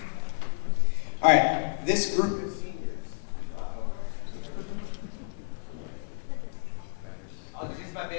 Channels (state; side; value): silent; right; digital silence